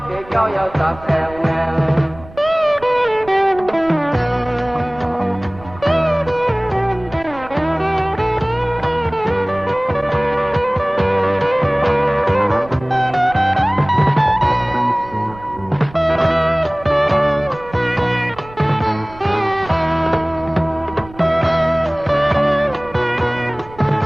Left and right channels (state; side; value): noise; right; rumble, 19 dB below the sound